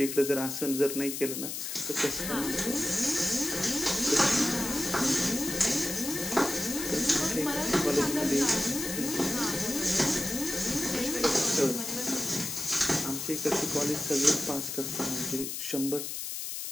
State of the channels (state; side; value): noise; left; hiss, 5 dB below the sound